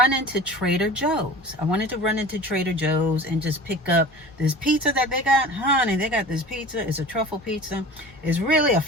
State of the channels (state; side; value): normal; both; correlation 0.38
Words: into Trader Joe's. And just pick up this pizza that they got. Honey, they got this pizza. It's a truffle pizza. It's really a